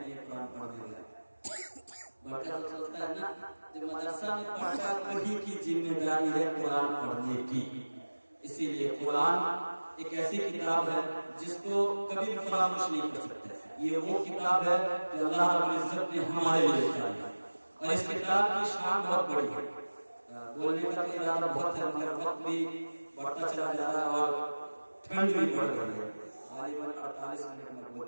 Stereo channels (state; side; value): inverted; both; correlation -1.00